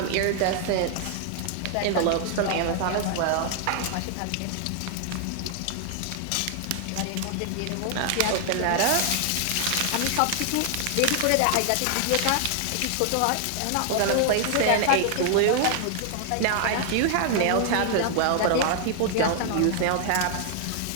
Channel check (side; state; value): both; different; correlation 0.00